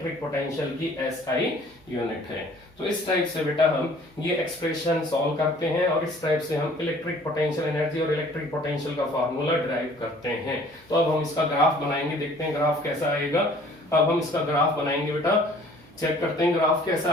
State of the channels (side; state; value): right; noise; hum, 30 dB below the sound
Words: पोटेंशियल की SI यूनिट है। तो इस टाइप से बेटा हम ये एक्सप्रेशन सॉल्व करते हैं और इस टाइप से हम इलेक्ट्रिक पोटेंशियल एनर्जी और इलेक्ट्रिक पोटेंशियल का फार्मूला डिराइव करते हैं। तो अब हम इसका ग्राफ बनाएंगे, देखते हैं ग्राफ कैसा आएगा। अब हम इसका ग्राफ बनाएंगे बेटा, चेक करते हैं ग्राफ कैसा